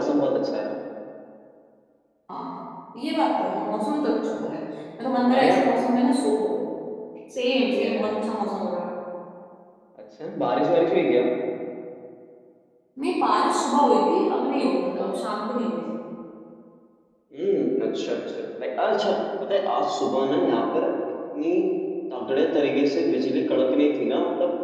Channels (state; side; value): identical; both; correlation 1.00